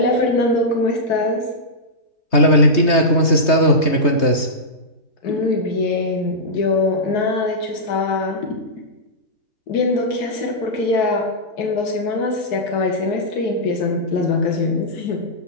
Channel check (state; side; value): late; right; 3.2 ms